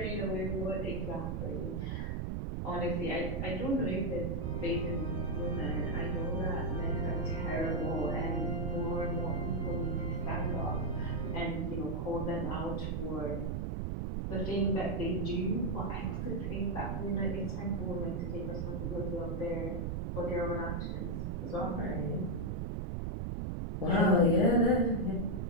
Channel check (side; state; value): right; noise; rumble, 1 dB below the sound